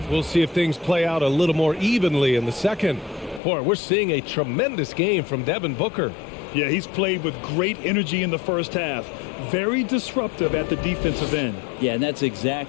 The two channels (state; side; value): drops out; right; at 3.4 s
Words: we'll see if things play out a little more evenly in the second. Boy, we're seeing a tremendous game from Devin Booker. Yeah, he's played with great energy in the first half. Very disruptive at the defensive end. Yeah, and that's